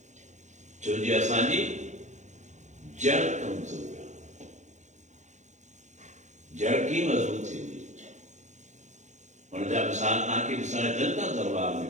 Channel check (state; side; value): late; left; 0.34 ms